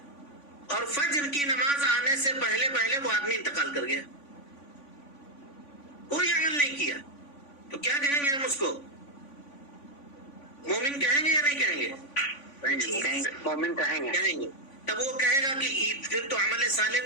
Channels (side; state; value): right; late; 3.5 ms